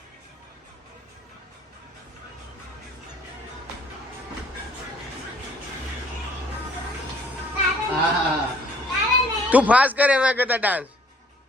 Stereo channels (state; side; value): normal; both; correlation 0.58